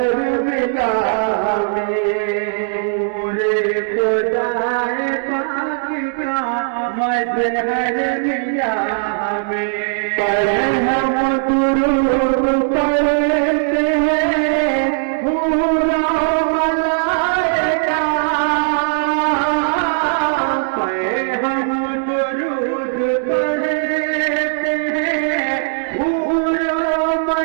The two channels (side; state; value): left; silent; digital silence